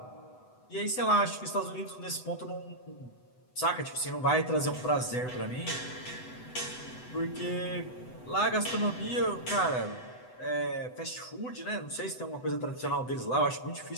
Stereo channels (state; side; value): late; right; 8.0 ms